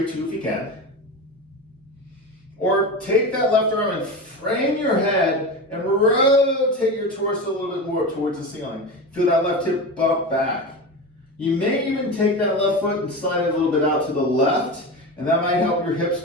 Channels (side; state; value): both; normal; correlation 0.24